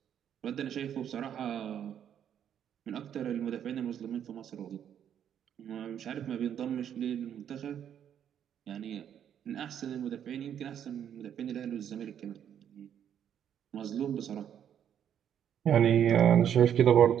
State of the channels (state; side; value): quieter; left; 9.4 dB